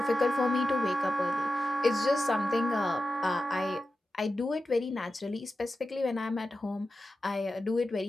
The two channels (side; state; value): both; normal; correlation 0.92